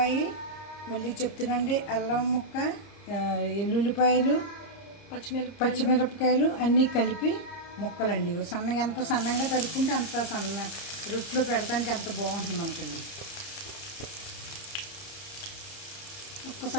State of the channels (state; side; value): late; right; 30 ms